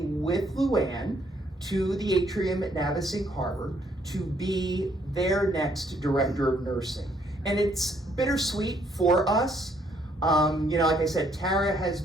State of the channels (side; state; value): both; normal; correlation 0.68